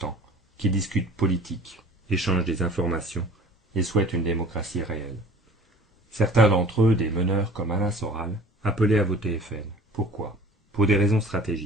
qui discutent politique, échangent des informations et souhaitent une démocratie réelle. Certains d'entre eux, des meneurs comme Alain Soral, appelaient à voter FN. Pourquoi? Pour des raisons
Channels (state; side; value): normal; both; correlation 0.46